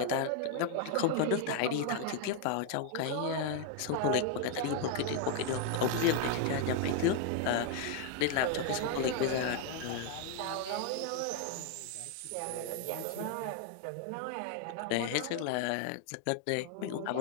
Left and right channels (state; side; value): different; both; correlation 0.00